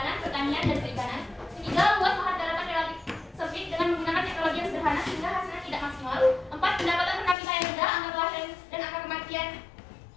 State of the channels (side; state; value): right; drops out; at 7.4 s